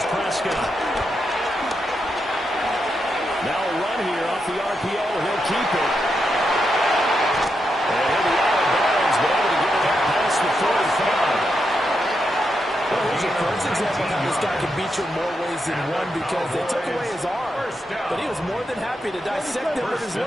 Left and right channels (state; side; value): normal; both; correlation 0.84